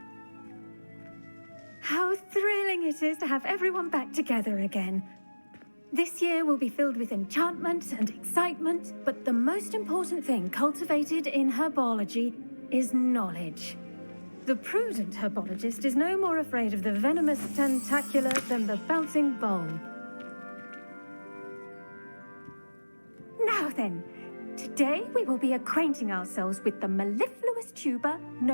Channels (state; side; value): inverted; both; correlation -1.00